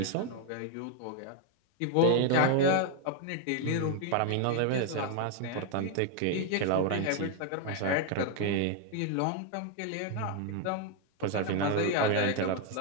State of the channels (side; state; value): both; different; correlation 0.00